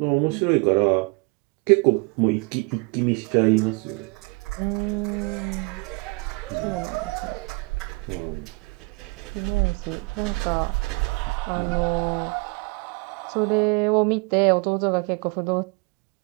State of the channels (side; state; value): left; quieter; 29.0 dB